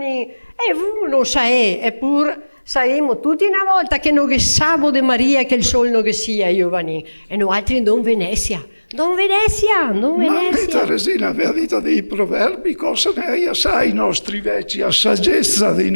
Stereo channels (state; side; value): inverted; both; correlation -1.00